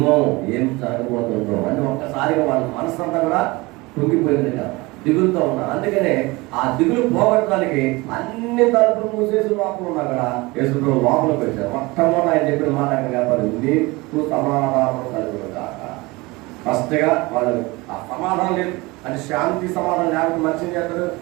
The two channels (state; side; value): quieter; left; 23.1 dB